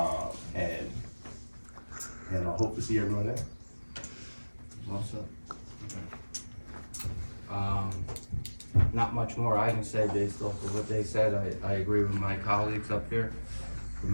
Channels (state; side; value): inverted; both; correlation -1.00